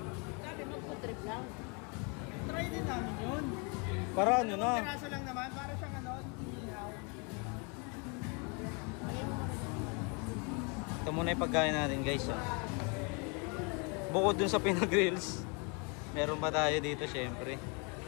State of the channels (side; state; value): right; quieter; 33.6 dB